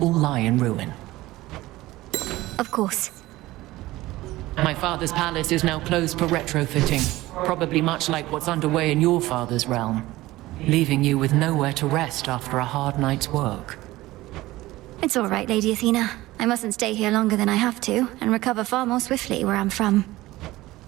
lie in ruin. Of course. My father's palace is now closed for retrofitting, probably much like what's underway in your father's realm, leaving you with nowhere to rest after a hard night's work. It's all right, Lady Athena. I mustn't stay here longer than I have to, and recover far more swiftly where I'm from.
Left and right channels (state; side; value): quieter; left; 17.9 dB